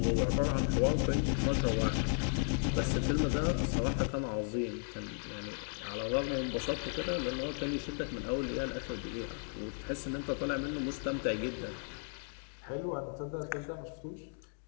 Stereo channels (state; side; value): silent; right; 54 dB below the other